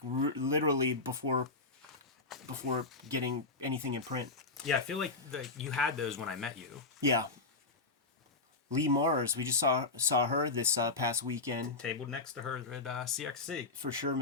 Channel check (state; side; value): quieter; right; 3.5 dB